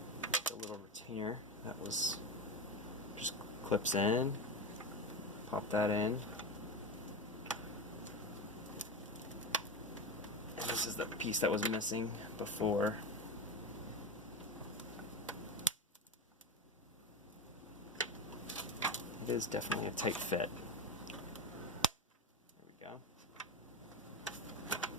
the little retainer that was just clips in, pop that in. And this is the piece that was missing before. It is definitely a tight fit.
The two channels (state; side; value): normal; both; correlation 0.19